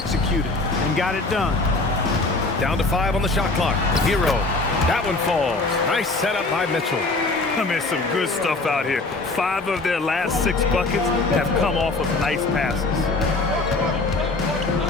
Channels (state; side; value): quieter; right; 3.3 dB